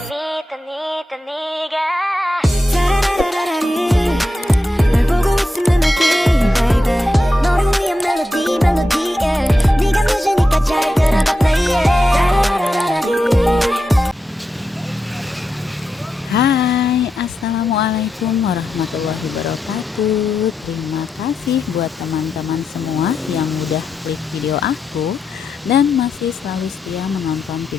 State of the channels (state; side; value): normal; both; correlation 0.88